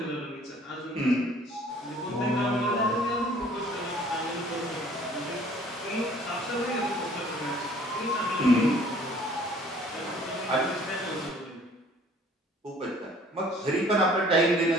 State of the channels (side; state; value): both; normal; correlation 0.54